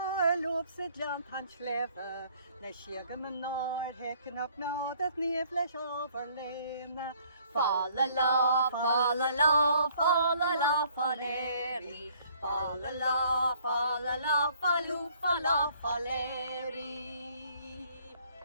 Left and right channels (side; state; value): both; inverted; correlation -0.61